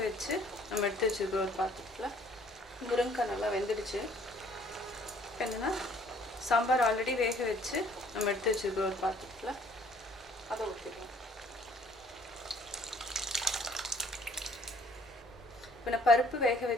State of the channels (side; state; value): both; normal; correlation 0.59